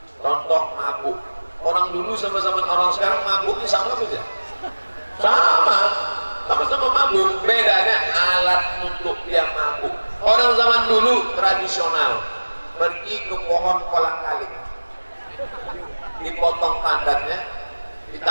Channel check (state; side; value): inverted; both; correlation -1.00